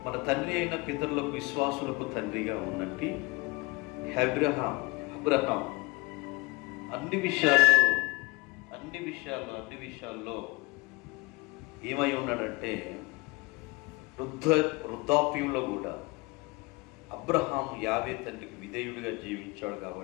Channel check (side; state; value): right; quieter; 25.0 dB